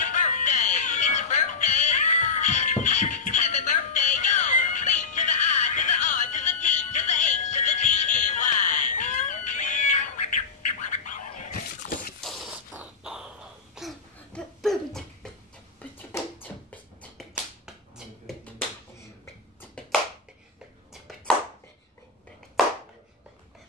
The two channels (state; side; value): quieter; right; 5.0 dB